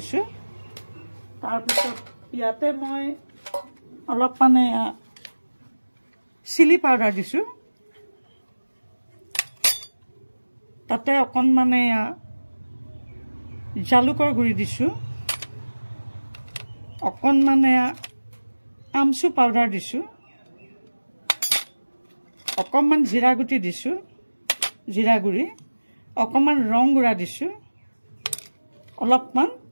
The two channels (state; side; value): inverted; both; correlation -1.00